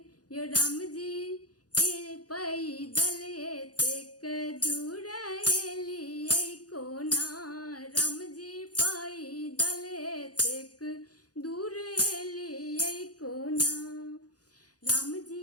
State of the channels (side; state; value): right; late; 0.68 ms